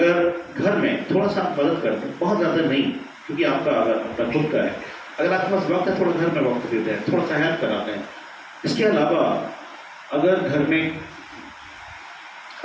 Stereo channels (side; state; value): both; identical; correlation 1.00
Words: घर में थोड़ा सा मदद करते हैं, बहुत ज्यादा नहीं, क्योंकि आपका अगर अपना खुद का है, अगर आपके पास वक्त है थोड़ा घर में वक्त देते हैं, थोड़ा सा हेल्प कराते हैं। इसके अलावा अगर घर में,